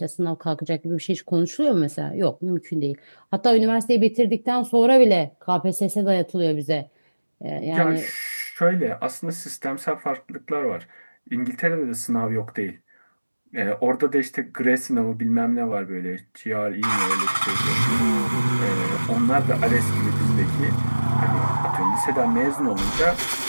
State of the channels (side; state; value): both; inverted; correlation -1.00